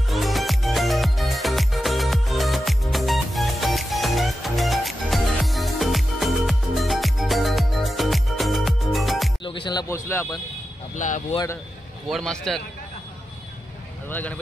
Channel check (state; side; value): normal; both; correlation 0.90